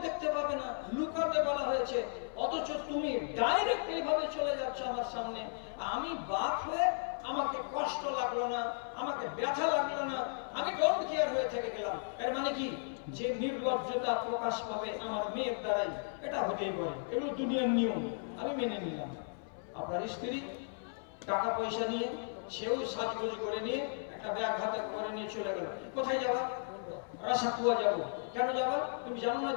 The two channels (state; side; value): silent; right; 54 dB below the other